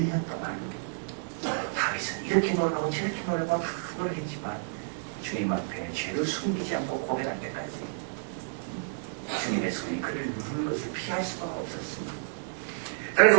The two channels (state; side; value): silent; left; 58 dB below the other